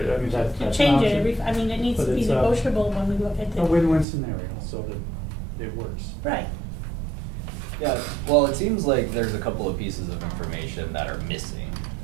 mean, that's an Change it option. it needs But to be it's, negotiable when we look at a the. win-win scenario, so that it works. Right. Yeah, well, it seems like there's a couple of pieces of information that are missing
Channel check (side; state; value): left; drops out; at 4.0 s